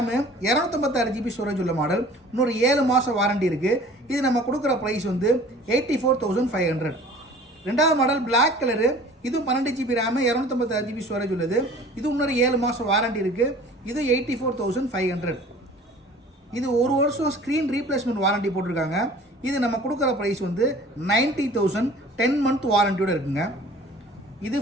256 GB ஸ்டோரேஜ் உள்ள மாடல். இன்னொரு 7 மாதம் வாரண்டி இருக்குது. இது நம்ம கொடுக்குற ப்ரைஸ் வந்து 84,500. ரெண்டாவது மாடல் பிளாக் கலரு, இதுவும் 12 GB ரேமு 256 GB ஸ்டோரேஜ் உள்ளது. இது இன்னொரு 7 மாதம் வாரண்டி இருக்குது. இது 84,500. இது ஒரு வருஷம் ஸ்க்ரீன் ரீப்ளேஸ்மெண்ட் வாரண்டி போட்டிருக்காங்க. இது நம்ம கொடுக்குற ப்ரைஸ் வந்து 90,000, 10 மந்த் வாரண்டியோட இருக்குங்க. இது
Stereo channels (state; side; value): normal; both; correlation 0.47